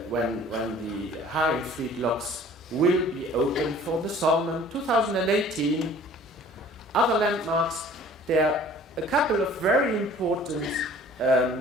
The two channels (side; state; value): both; normal; correlation 0.50